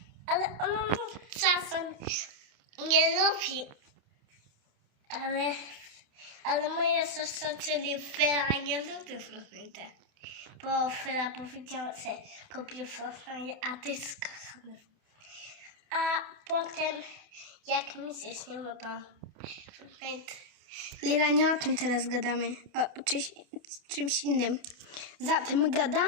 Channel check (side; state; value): left; late; 29 ms